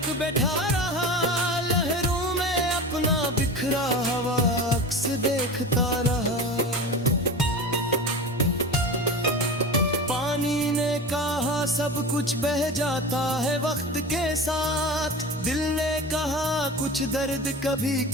बैठा रहा, लहरों में अपना बिखरा हवा अक्स देखता रहा। पानी ने कहा सब कुछ बह जाता है वक्त के साथ, दिल ने कहा कुछ दर्द कभी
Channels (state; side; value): normal; both; correlation 0.31